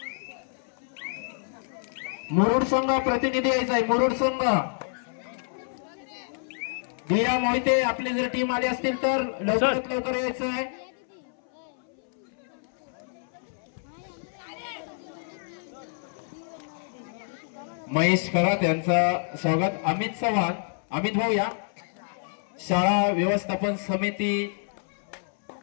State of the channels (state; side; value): silent; right; 60 dB below the other